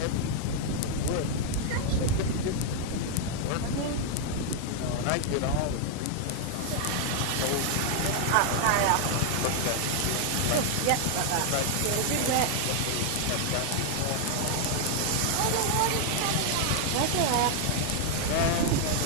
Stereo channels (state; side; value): different; both; correlation 0.00